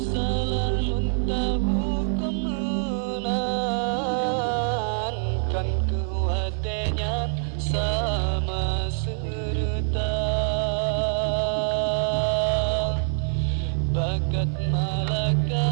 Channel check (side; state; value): left; silent; 61 dB below the other